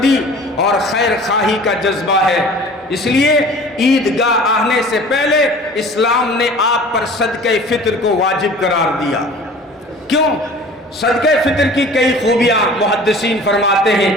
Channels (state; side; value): normal; both; correlation 0.44